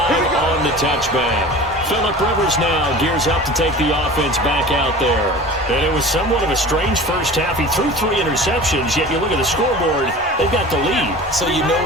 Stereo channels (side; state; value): both; normal; correlation 0.38